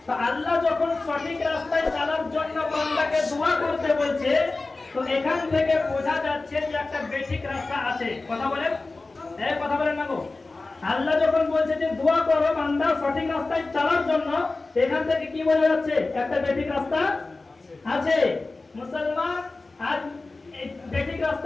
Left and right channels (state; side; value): quieter; right; 3.4 dB